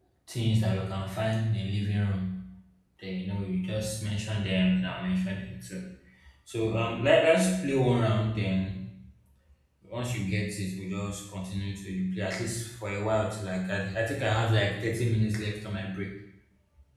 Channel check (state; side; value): identical; both; correlation 1.00